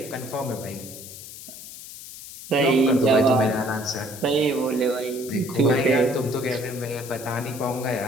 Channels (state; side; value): noise; left; hiss, 14 dB below the sound